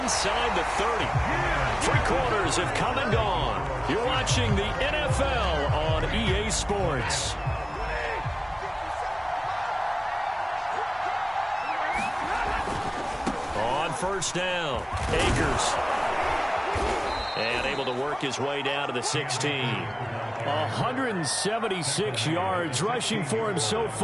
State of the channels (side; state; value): both; identical; correlation 1.00